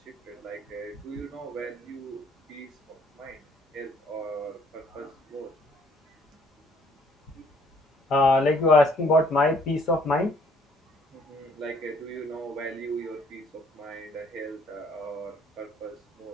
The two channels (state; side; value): normal; both; correlation 0.63